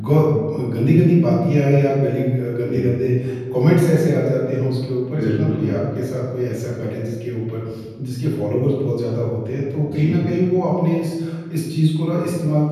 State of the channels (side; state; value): both; identical; correlation 1.00